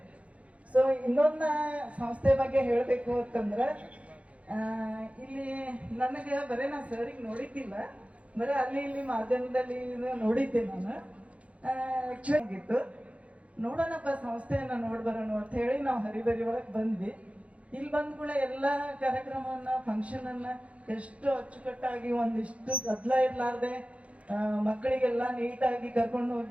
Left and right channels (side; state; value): left; late; 0.064 ms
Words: ಸೊ ಇನ್ನೊಂದು ಸಂಸ್ಥೆ ಬಗ್ಗೆ ಹೇಳಬೇಕು ಅಂತಂದ್ರೆ, ಇಲ್ಲಿ ನನಗೆ ಬರೀ ನಾ ಸರಿಗೆ ನೋಡಿದ್ದಿಲ್ಲ, ಬರೀ ಅಲ್ಲಿ ಇಲ್ಲಿ ಮಾಧ್ಯಮದಲ್ಲಿ ನೋಡಿದ್ದೆ ನಾನು. ಆಕ್ಚುಲಿ ಆಗಿತ್ತು, ನೋಡೋಣಪ್ಪ ಸಂಸ್ಥೆಯನ್ನ ನೋಡ್ಬರೋಣ ಅಂತ ಹೇಳಿ ನಾವು ಹರಿಬರಿ ಒಳಗೆ ಬಂದ್ವಿ. ಇಲ್ಲಿ ಬಂದ್ಕೂಡ ಎಲ್ಲ ಕಾರ್ಯಕ್ರಮವನ್ನ ಫಂಕ್ಷನ್ ಅನ್ನ ಎಷ್ಟು ಅಚ್ಚುಕಟ್ಟಾಗಿ ಒಂದಿಷ್ಟು ಗದ್ದಲ ಇರ್ಲಾರ್ದೆ ಮಕ್ಕಳಿಗೆಲ್ಲ ನೀಟಾಗಿ ಕರ್ಕೊಂಡು